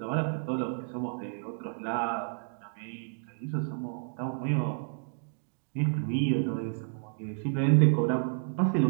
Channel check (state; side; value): silent; left; digital silence